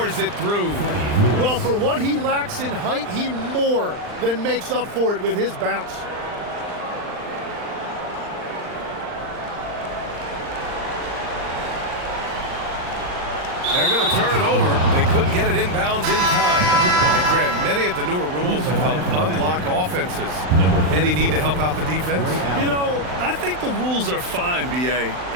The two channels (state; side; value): late; left; 39 ms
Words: it through. Well, for what he lacks in height, he more than makes up for it with his bounce. They're going to turn it over. They couldn't get it inbounds in time. And Grant, many of the newer rules have helped unlock offenses. Any need to help out the defense? You know, I think the rules are fine, BA.